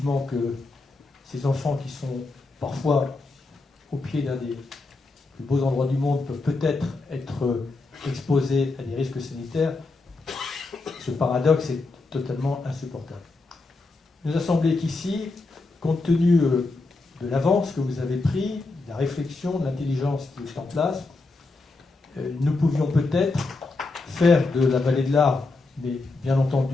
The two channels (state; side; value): quieter; right; 3.5 dB